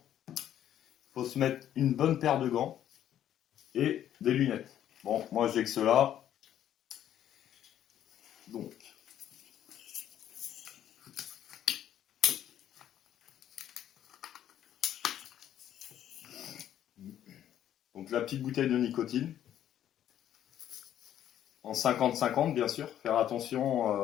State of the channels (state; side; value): quieter; right; 10.9 dB